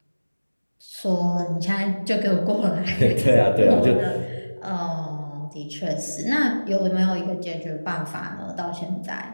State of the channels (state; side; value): inverted; both; correlation -1.00